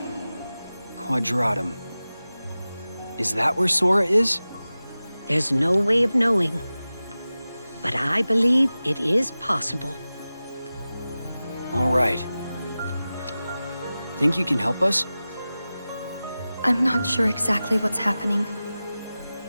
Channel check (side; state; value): both; inverted; correlation -0.96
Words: Quadratum. Is that where Sora is? There's no way of knowing. But I believe it is possible. All right. Think you can help us? I'm not sure exactly what's happening.